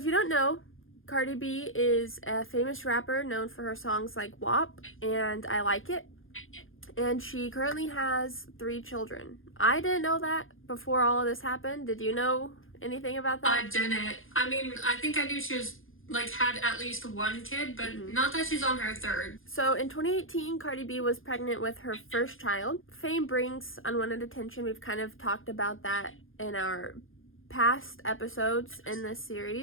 you don't know, Cardi B is a famous rapper known for her songs like WAP and I Like It. And she currently has 3 children. I didn't know that before all of this happened. Did you know anything about that? I didn't. I mean, I think I knew she was, had at least 1 kid, but not that she's on her 3rd. So in 2018, Cardi B was pregnant with her first child. Fame brings unwanted attention. We've kind of talked about that in our past episodes in this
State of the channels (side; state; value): right; late; 0.59 ms